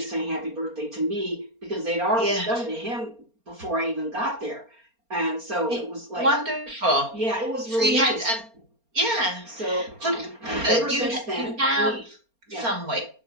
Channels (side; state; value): left; late; 4.3 ms